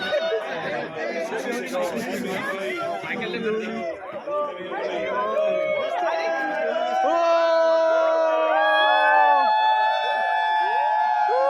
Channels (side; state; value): both; identical; correlation 1.00